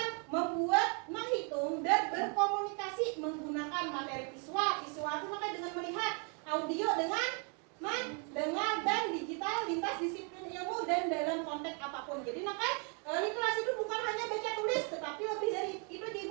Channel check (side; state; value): left; quieter; 37.7 dB